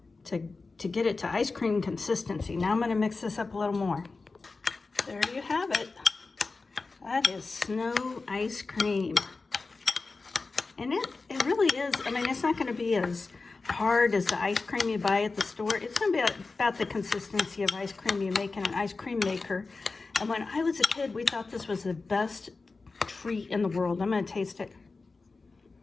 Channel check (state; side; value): quieter; right; 3.9 dB